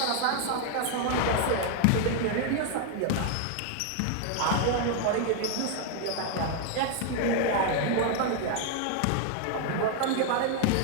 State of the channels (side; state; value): both; different; correlation 0.00